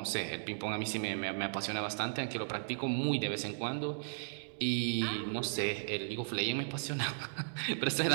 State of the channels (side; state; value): left; silent; digital silence